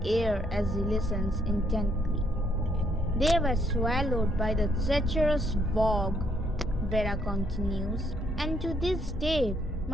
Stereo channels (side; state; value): both; normal; correlation 0.71